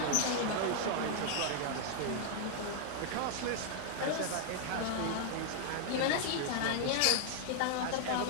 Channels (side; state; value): both; different; correlation 0.00